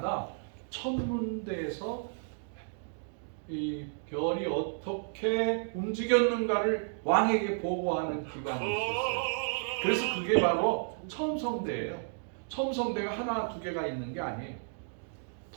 천문대에서 이 별이 어떻게 움직였는가를 왕에게 보고하는 기관이 있었어요. 그래서 그게 바로 첨성대예요. 첨성대가 하나 두 개가 있는 게 아니에요.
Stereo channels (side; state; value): left; silent; digital silence